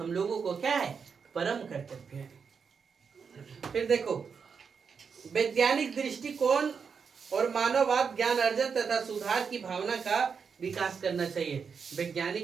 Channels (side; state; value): left; quieter; 6.0 dB